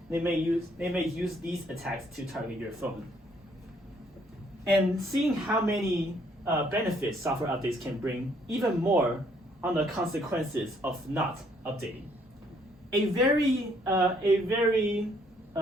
They may use these attacks to target your phone. And seeing how many benefits software updates can bring, even more on the consequences of not updating.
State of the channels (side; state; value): both; normal; correlation 0.66